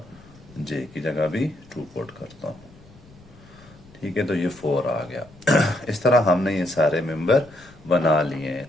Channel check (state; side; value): noise; left; rumble, 24 dB below the sound